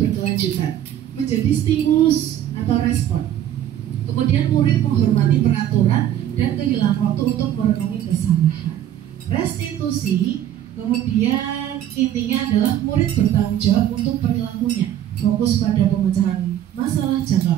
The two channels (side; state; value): left; quieter; 11.3 dB